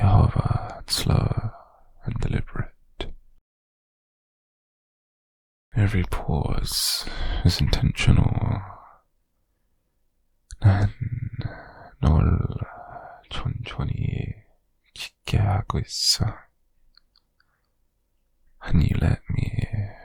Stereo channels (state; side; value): identical; both; correlation 1.00